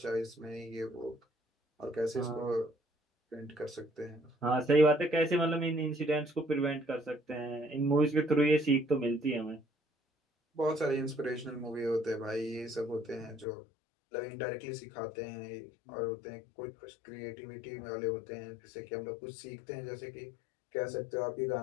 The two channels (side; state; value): right; drops out; at 13.5 s